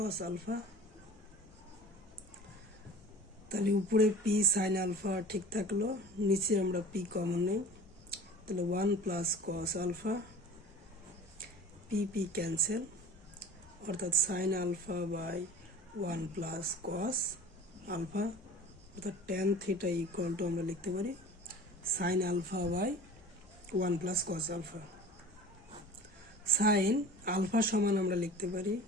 আলফা। তাহলে উপরে পি সাইন আলফা ঠিক থাকলো, নিচে আমরা পি কমন নেই, তাহলে 1 plus cos alpha, P P cancel, অর্থাৎ sine alpha by 1 plus cos alpha, অর্থাৎ tan থিটা ইকুয়াল টু আমরা লিখতে পারি sine alpha by 1 plus cos alpha. Sine alpha সমান আমরা লিখতে পারি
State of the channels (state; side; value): normal; both; correlation 0.40